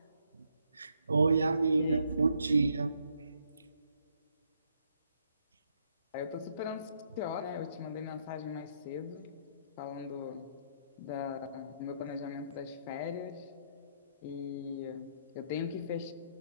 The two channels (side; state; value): both; inverted; correlation -0.74